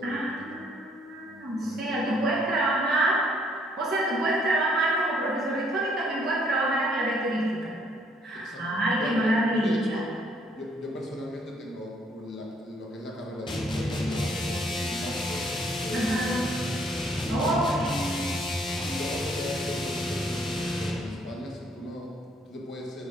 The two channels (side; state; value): both; normal; correlation 0.65